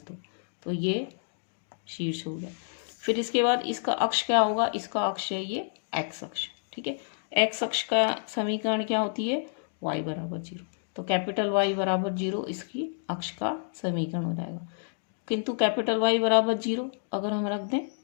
तो ये शीर्ष हो गया। फिर इसके बाद इसका अक्ष क्या होगा, इसका अक्ष है ये एक्स अक्ष, ठीक है। एक्स अक्ष का समीकरण क्या होती है, वाई बराबर 0, तो कैपिटल वाई बराबर 0 इसकी अक्ष का समीकरण हो जाएगा। किंतु कैपिटल वाई बराबर 0 अगर हम रख दें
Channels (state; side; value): silent; right; digital silence